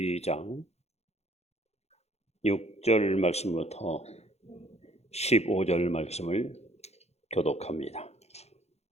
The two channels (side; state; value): right; late; 0.31 ms